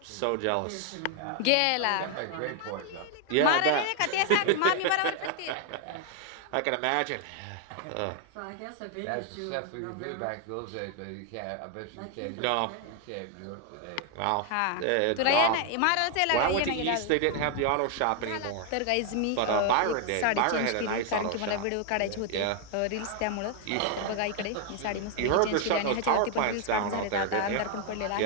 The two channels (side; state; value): both; different; correlation 0.00